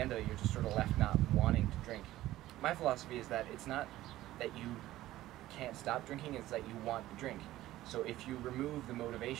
of it you're just sort of left not wanting to drink. My philosophy is that it's not that you can't stop drinking, it's that you want to drink. So if you remove the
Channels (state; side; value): quieter; left; 15.3 dB